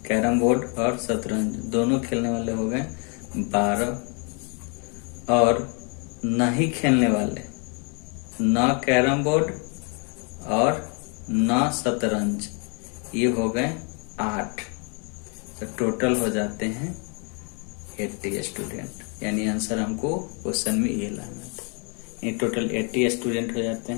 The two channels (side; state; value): right; quieter; 36.4 dB